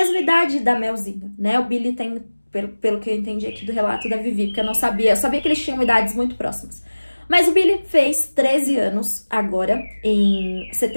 idade da Melzinha, né? O Billy tem, pelo que eu entendi aqui do relato da Vivi, porque eu sabia que eles tinham idades muito próximas. Mas o Billy fez 13 anos agora, em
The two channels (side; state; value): both; inverted; correlation -1.00